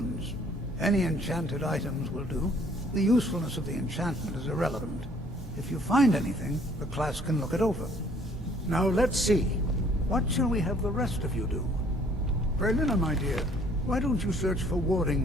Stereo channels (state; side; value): normal; both; correlation 0.59